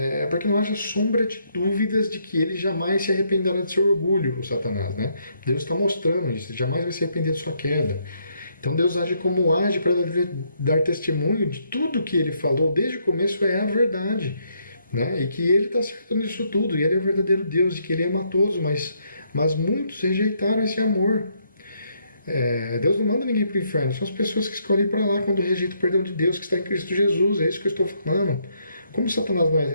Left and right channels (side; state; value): both; inverted; correlation -0.73